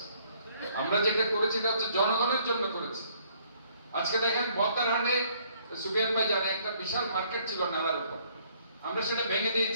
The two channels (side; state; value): both; inverted; correlation -0.64